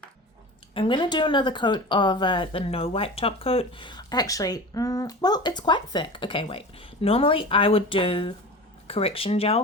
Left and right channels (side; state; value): both; normal; correlation 0.33